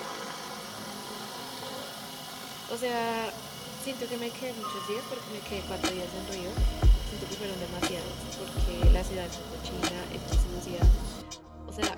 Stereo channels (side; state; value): both; identical; correlation 1.00